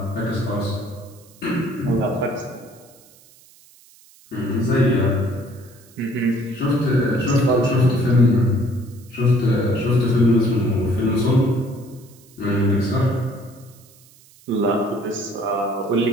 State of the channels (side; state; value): right; noise; hiss, 26 dB below the sound